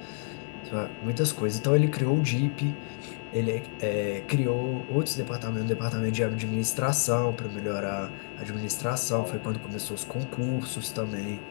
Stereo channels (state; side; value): silent; right; digital silence